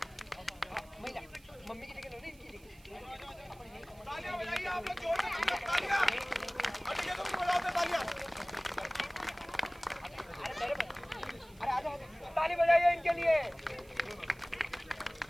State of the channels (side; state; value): right; noise; hiss, 26 dB below the sound